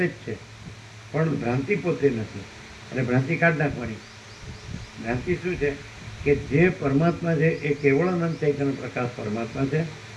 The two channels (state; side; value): identical; both; correlation 1.00